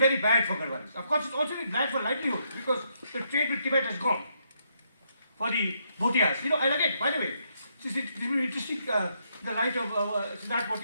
bad for Garhwalis. Of course, it's also been bad for livelihood because the trade with Tibet has gone for the Bhotias. And again, by the way, this is interesting in the light of Siddharth, what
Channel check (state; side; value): inverted; both; correlation -0.76